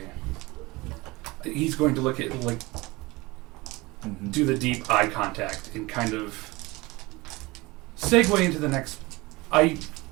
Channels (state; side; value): quieter; left; 22.4 dB